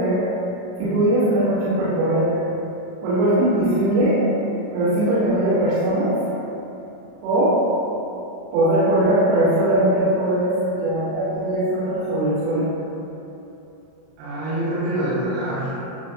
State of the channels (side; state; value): left; late; 38 ms